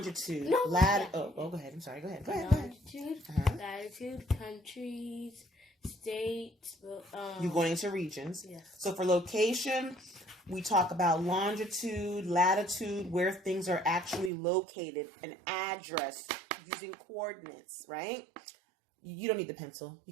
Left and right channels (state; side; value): drops out; left; at 14.3 s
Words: latitude. Go ahead. I'm sorry. Go ahead. Longitude, latitude, countries, states. You're going into regions. Yes. So for location, we talk about longitude, latitude, where things are actually located, an address using coordinates, right? You don't need the pencil.